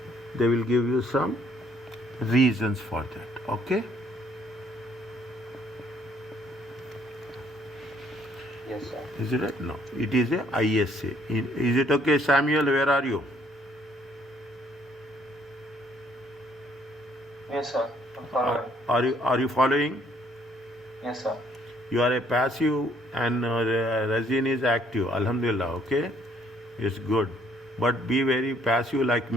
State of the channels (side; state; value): both; normal; correlation 0.65